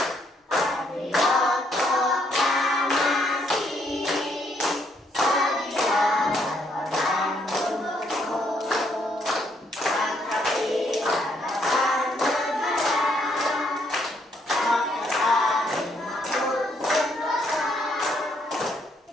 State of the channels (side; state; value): both; normal; correlation 0.71